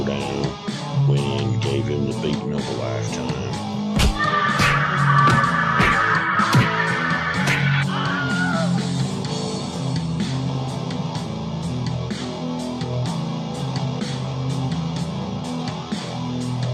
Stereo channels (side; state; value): both; identical; correlation 1.00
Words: down, went in, gave him the beating of a lifetime.